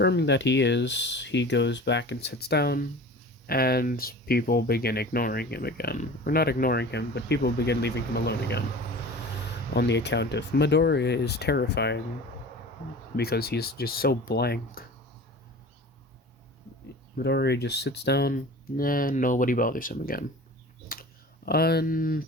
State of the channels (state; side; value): normal; both; correlation 0.38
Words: that he is, he goes back and sits down, and people begin ignoring him again. Or not ignoring him, but people begin leaving him alone again. On the account of Midoriya is terrifying, because he's just so blank. Midoriya just sits down, and nobody bothers him again.